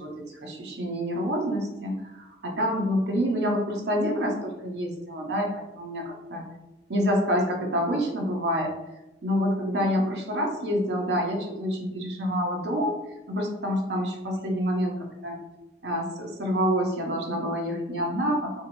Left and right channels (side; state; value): both; normal; correlation 0.44